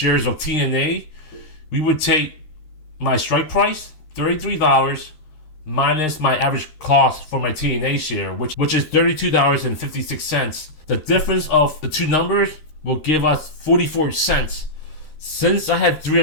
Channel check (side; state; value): right; late; 13 ms